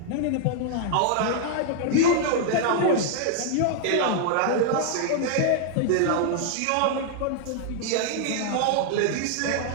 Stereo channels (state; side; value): different; both; correlation -0.01